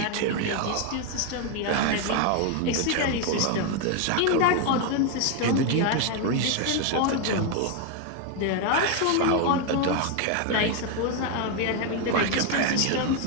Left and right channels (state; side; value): different; both; correlation 0.01